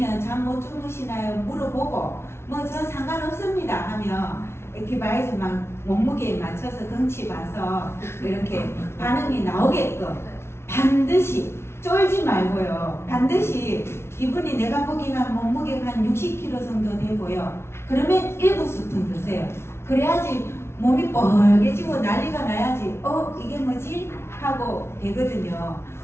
잠 못 주무시나요? 물어보고 뭐 저 상관없습니다 하면 액티바이저 막 몸무게에 맞춰서 덩치 봐서 이렇게 반응이 나오게끔 반드시 쫄지 말고요. 반드시 이분이 내가 보기엔 몸무게가 한 60kg 정도 되고요. 그러면 1스푼 드세요. 그래야지 몸이 뻘개지고 난리가 나야지 이게 뭐지? 하고 되거든요.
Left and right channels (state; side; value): late; right; 0.12 ms